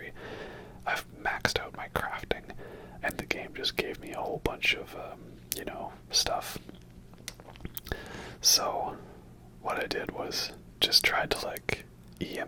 I've maxed out my crafting, and the game just gave me a whole bunch of, stuff. So, what I did was just tried to, like,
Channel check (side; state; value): both; identical; correlation 1.00